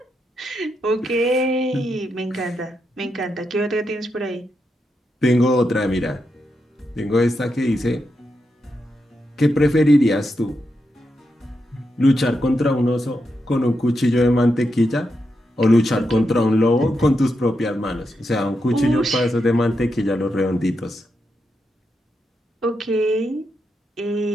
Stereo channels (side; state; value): both; normal; correlation 0.85